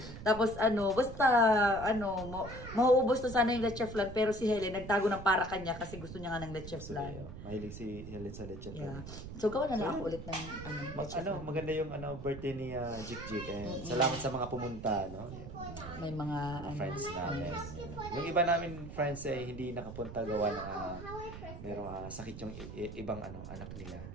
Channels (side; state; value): right; noise; rumble, 11 dB below the sound